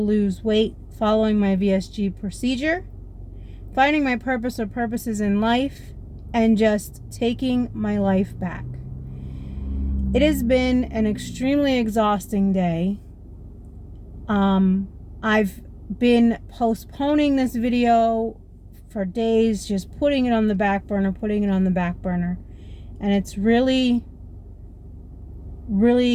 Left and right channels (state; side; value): identical; both; correlation 1.00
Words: weight, following my VSG procedure, finding my purpose or purposes in life, and just taking my life back. It has been an extremely exhausting day. I've been postponing this video for days, just putting it on the back burner, and it's really